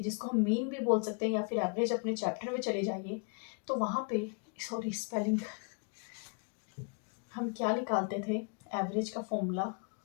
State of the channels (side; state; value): right; quieter; 38.2 dB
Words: जिसको हम मीन भी बोल सकते हैं या फिर एवरेज। अपने चैप्टर में चले जाइए तो वहाँ पे, सॉरी स्पेलिंग, हम क्या निकालते थे, एवरेज का फॉर्मूला